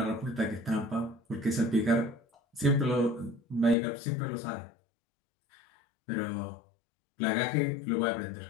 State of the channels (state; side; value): drops out; right; at 3.8 s